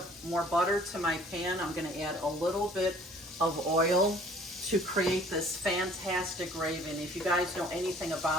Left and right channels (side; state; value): both; normal; correlation 0.54